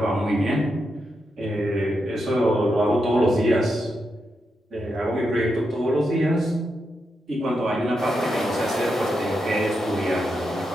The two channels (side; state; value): both; normal; correlation 0.85